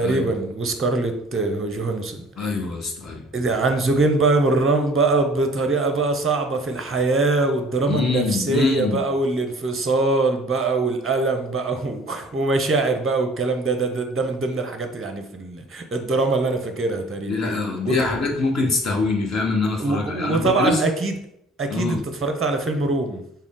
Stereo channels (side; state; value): both; normal; correlation 0.51